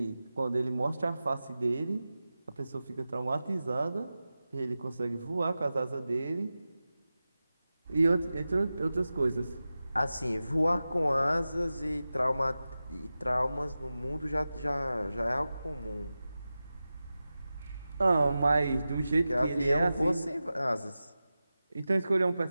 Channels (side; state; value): both; inverted; correlation -0.94